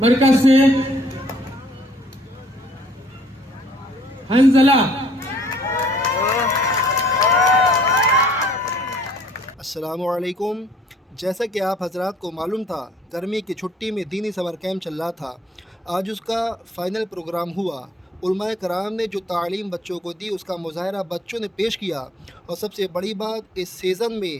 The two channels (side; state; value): both; normal; correlation 0.60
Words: मरकज से हंजला। अस्सलामुअलैकुम। जैसा कि आप हजरात को मालूम था, गर्मी की छुट्टी में दीनी समर कैंप चल रहा था। आज उसका फ़ाइनल प्रोग्राम हुआ। उलमाए कराम ने जो तालीम बच्चों को दी उसका मुज़ाहरा बच्चों ने पेश किया, और सबसे बड़ी बात, इस सीज़न में